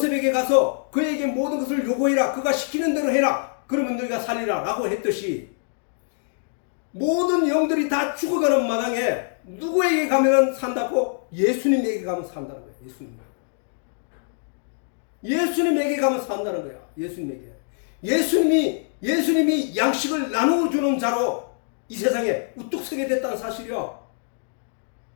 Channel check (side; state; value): right; silent; digital silence